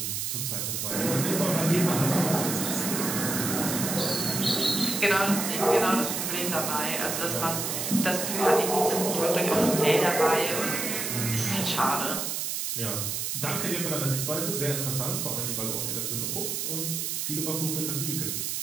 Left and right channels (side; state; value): right; noise; hiss, 2 dB below the sound